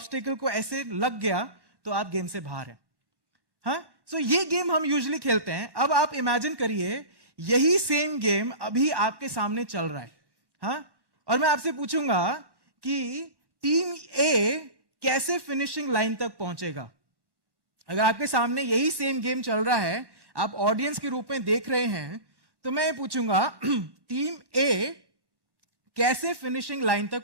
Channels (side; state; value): left; late; 1.1 ms